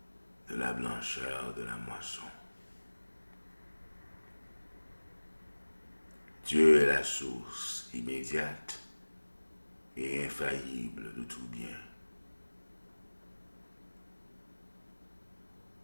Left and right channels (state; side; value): inverted; both; correlation -1.00